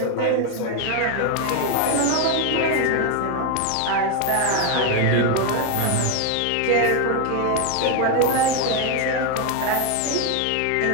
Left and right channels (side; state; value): both; different; correlation 0.01